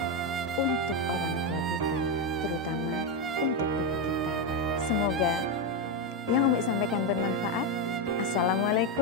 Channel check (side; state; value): both; normal; correlation 0.07